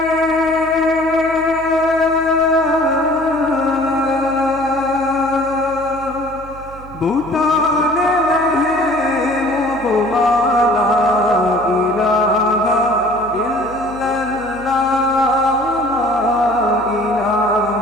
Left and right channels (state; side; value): noise; right; hum, 18 dB below the sound